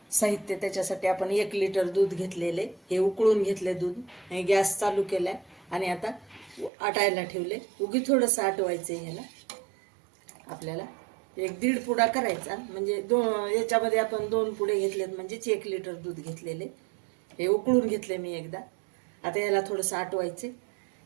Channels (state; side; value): drops out; left; at 6.7 s